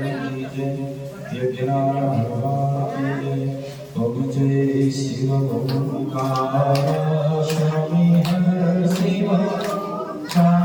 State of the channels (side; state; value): both; identical; correlation 1.00